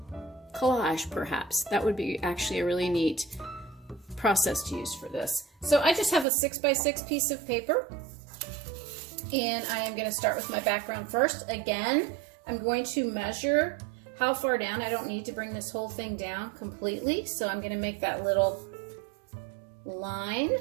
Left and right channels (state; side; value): drops out; left; at 6.2 s